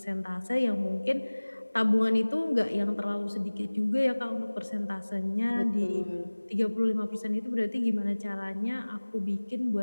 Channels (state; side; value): inverted; both; correlation -1.00